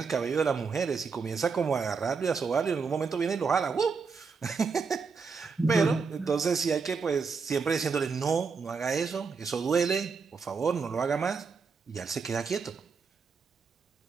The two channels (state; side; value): quieter; left; 5.2 dB